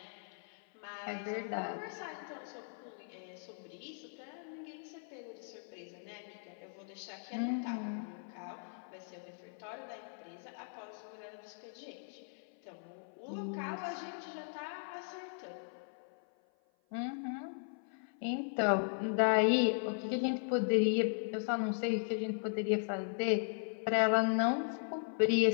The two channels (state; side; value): silent; right; 52 dB below the other